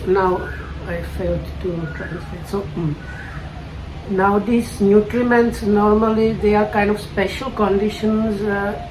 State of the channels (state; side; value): identical; both; correlation 1.00